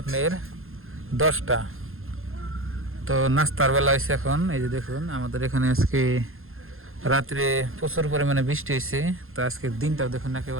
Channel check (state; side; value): late; left; 0.61 ms